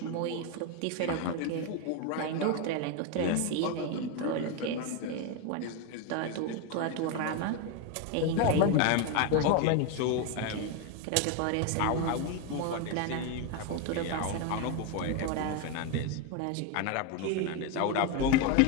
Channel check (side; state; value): both; different; correlation 0.02